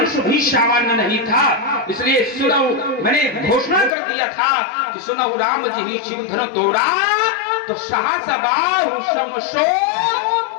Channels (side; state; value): right; drops out; at 3.9 s